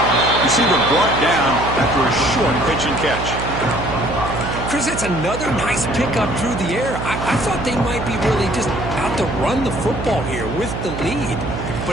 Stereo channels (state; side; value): noise; right; hum, 6 dB below the sound